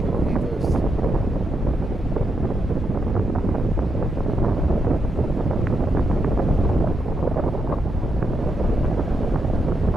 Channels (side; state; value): both; normal; correlation 0.82